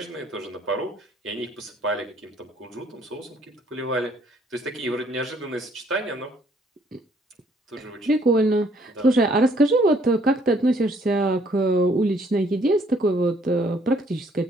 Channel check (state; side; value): normal; both; correlation 0.65